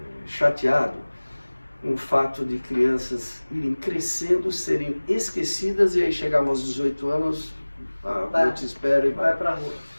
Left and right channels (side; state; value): both; inverted; correlation -1.00